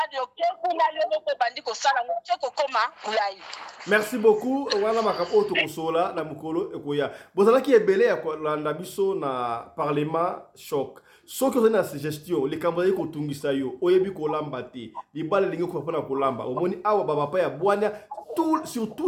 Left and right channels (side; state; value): both; identical; correlation 1.00